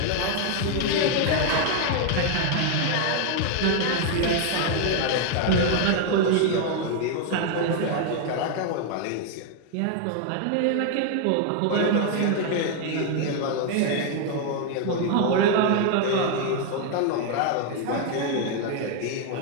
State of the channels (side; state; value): both; different; correlation 0.00